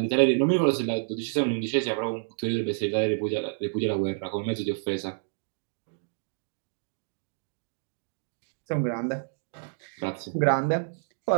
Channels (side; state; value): left; silent; digital silence